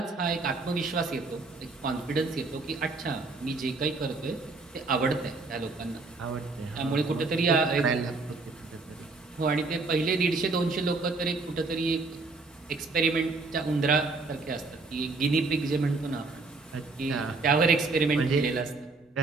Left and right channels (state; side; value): quieter; left; 3.7 dB